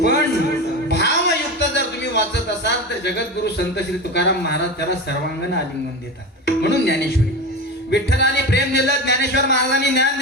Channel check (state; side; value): normal; both; correlation 0.24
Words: भावयुक्त जर तुम्ही वाचत असाल तर जगद्गुरु संत श्री तुकाराम महाराज त्याला सर्वांगण आलिंगन देतात. म्हणून ज्ञानेश्वरी. विठ्ठलाने प्रेम दिलं, ज्ञानेश्वर महाराजांनी ज्ञान